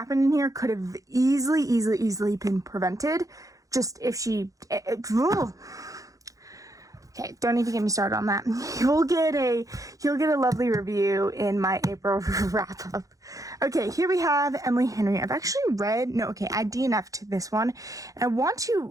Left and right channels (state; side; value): late; left; 0.17 ms